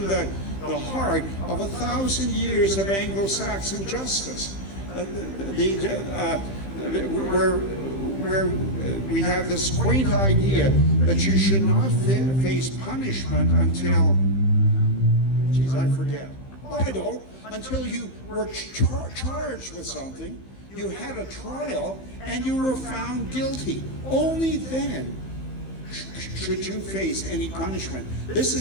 the heart of 1,000 years of Anglo-Saxon justice, where we have this quaint idea that you should not face punishment until, I forget. I don't. Until you were charged with something, you had a trial, and you were found guilty. Only then should you face any punishment. This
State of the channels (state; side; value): late; right; 15 ms